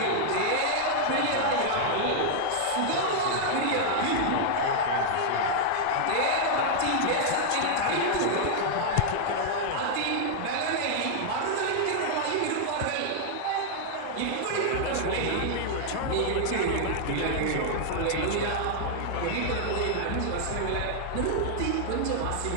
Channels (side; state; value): both; different; correlation -0.01